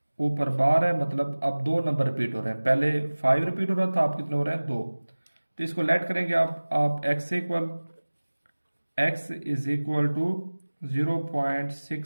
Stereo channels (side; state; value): both; inverted; correlation -1.00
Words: ऊपर बार है, मतलब अब दो नंबर रिपीट हो रहे हैं। पहले 5 रिपीट हो रहा था, आप कितने हो रहे हैं, 2। तो इसको लेट करेंगे आप x equal, x is equal to